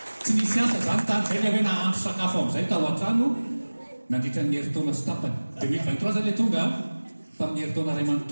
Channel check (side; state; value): both; inverted; correlation -1.00